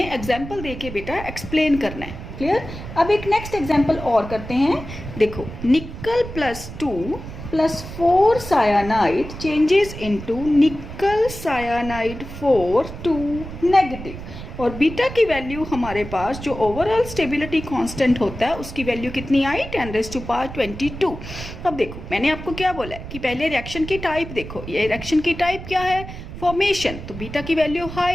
एग्जाम्पल दे के बेटा एक्सप्लेन करना है, क्लियर। अब एक नेक्स्ट एग्जाम्पल और करते हैं। देखो nickel plus 2 plus 4 cyanide changes into nickel cyanide 4 2 negative. और बीटा की वैल्यू हमारे पास जो ओवरऑल स्टेबिलिटी कांस्टेंट होता है उसकी वैल्यू कितनी आई, 10⁻22। अब देखो मैंने आपको क्या बोला है कि पहले रिएक्शन की टाइप देखो। ये रिएक्शन की टाइप क्या है, फॉर्मेशन। तो बीटा की वैल्यू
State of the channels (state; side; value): noise; right; rumble, 11 dB below the sound